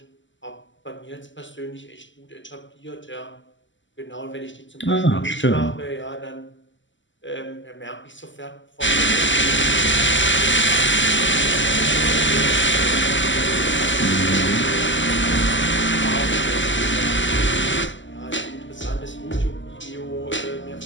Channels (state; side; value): late; right; 0.54 ms